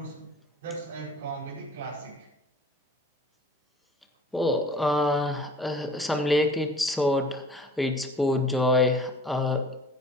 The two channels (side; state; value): both; normal; correlation 0.47